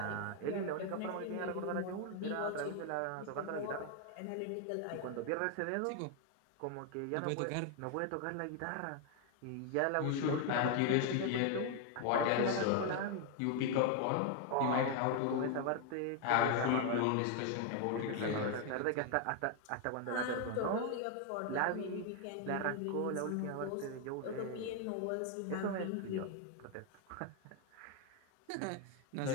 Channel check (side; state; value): both; different; correlation 0.01